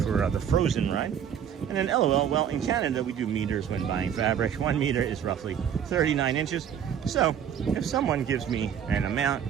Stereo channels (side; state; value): left; quieter; 8.7 dB